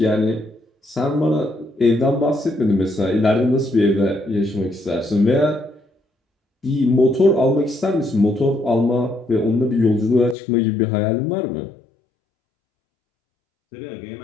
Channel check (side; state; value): right; drops out; at 10.4 s